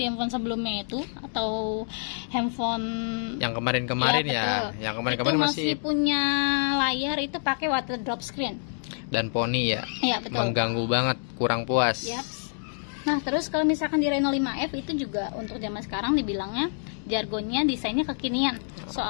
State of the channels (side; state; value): right; silent; digital silence